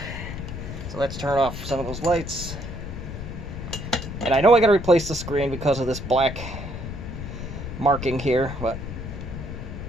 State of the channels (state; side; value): noise; left; rumble, 8 dB below the sound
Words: So let's turn off some of those lights. And I know I gotta replace the screen because of this black marking here, but...